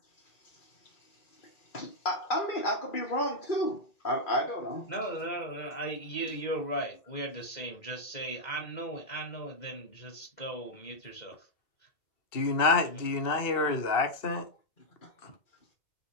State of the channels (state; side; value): late; right; 2.7 ms